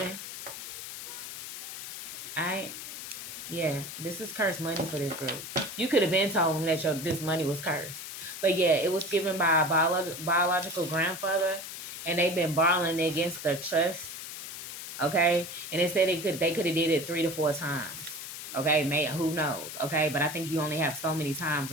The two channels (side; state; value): left; noise; hiss, 9 dB below the sound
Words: Alright, yeah, this is cursed money for this group. You could have been told them that this money was cursed, but yeah, it was given by a biological grandfather, and they've been borrowing against the trust. Okay, and they said they could have did it 3 to 4 times. Okay, who knows? Okay, but I think you only have so many times